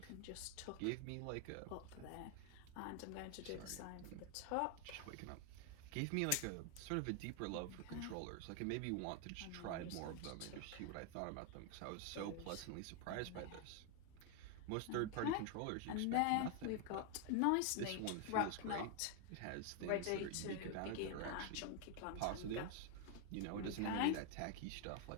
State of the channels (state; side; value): different; both; correlation 0.01